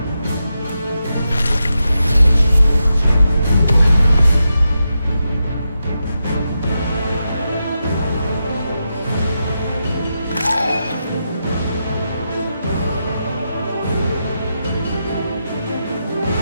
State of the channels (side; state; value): both; inverted; correlation -0.87